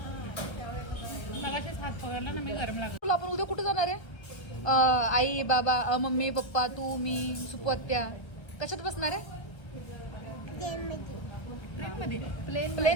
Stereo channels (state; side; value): late; right; 1.4 ms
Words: हात पकडला ना मी. गरम लागला. आपण उद्या कुठे जाणार आहे? आई बाबा मम्मी पप्पा तू मी सुपू आत्या कशात बसणार आहे? प्लेन